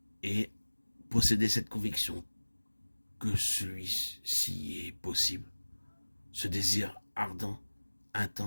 et posséder cette conviction que celui-ci est possible. Ce désir ardent,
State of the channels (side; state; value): both; inverted; correlation -1.00